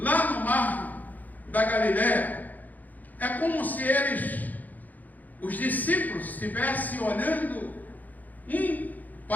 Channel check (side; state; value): right; late; 0.082 ms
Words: no mar da Galileia. É como se eles os discípulos estivessem olhando um